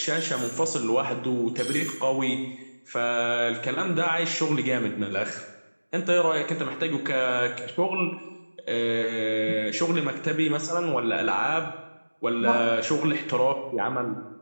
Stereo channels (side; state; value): both; inverted; correlation -1.00